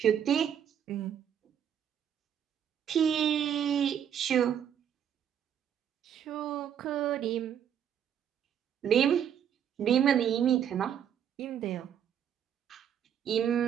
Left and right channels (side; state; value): left; quieter; 9.1 dB